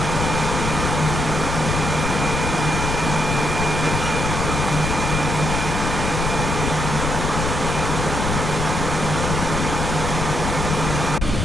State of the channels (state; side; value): noise; left; rumble, 2 dB below the sound